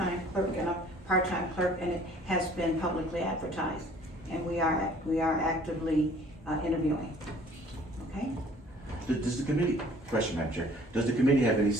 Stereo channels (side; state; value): both; normal; correlation 0.54